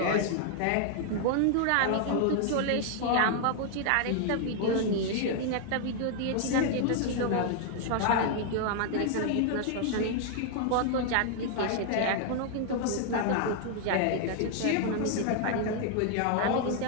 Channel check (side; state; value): both; different; correlation 0.00